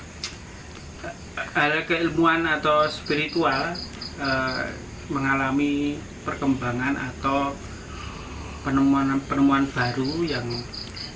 hal keilmuan atau spiritual mengalami perkembangan atau penemuan baru yang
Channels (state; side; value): identical; both; correlation 1.00